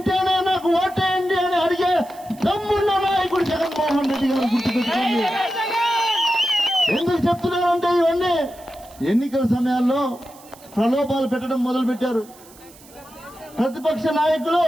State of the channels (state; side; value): noise; right; hiss, 23 dB below the sound